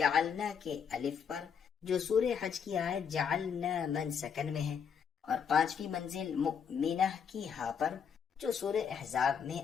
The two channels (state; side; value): quieter; right; 7.1 dB